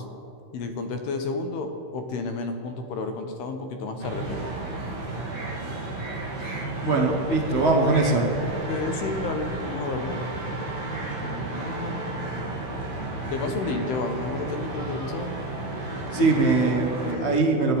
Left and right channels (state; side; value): late; right; 16 ms